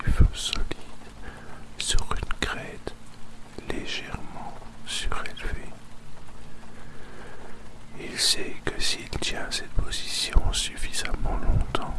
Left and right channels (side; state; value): both; identical; correlation 1.00